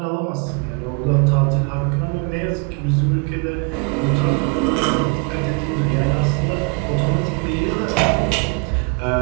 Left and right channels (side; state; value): left; quieter; 31.5 dB